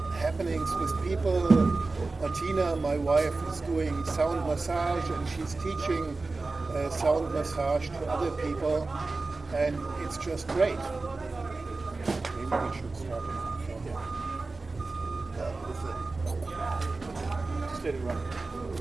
happenings with people. Martina, my wife, is doing sound massage, and she's teaching sound massage to other people, and it's just great. Maybe we should start with it. Just let it run.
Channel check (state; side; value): quieter; left; 3.6 dB